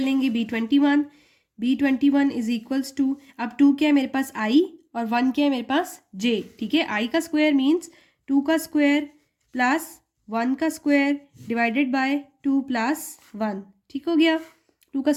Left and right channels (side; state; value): both; identical; correlation 1.00